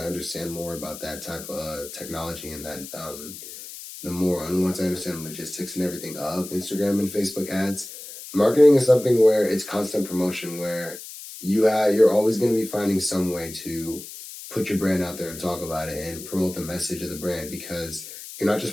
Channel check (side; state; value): left; noise; hiss, 13 dB below the sound